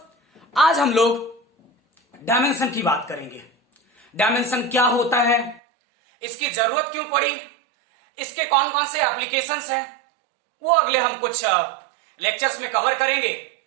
आज हम लोग डायमेंशन की बात करेंगे। डायमेंशन क्या होता है, इसकी जरूरत क्यों पड़ी, इसके कौन कौन से एप्लीकेशंस हैं, वो अगले हम कुछ लेक्चर्स में कवर करेंगे।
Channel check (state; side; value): drops out; left; at 5.6 s